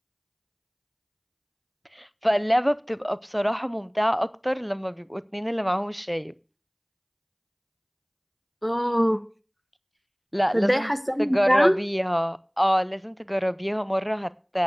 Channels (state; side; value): identical; both; correlation 1.00